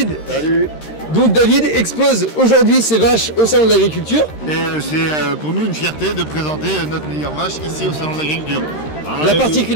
Salut. Donc David expose aujourd'hui ses vaches au Salon de l'Agriculture. Et c'est pour nous une fierté de présenter notre meilleure vache ici au Salon de l'Agriculture. La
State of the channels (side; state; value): right; late; 13 ms